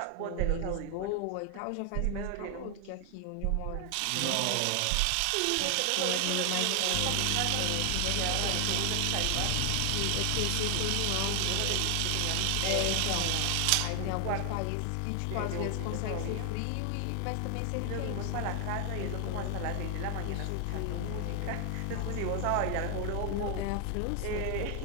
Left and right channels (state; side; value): different; both; correlation 0.00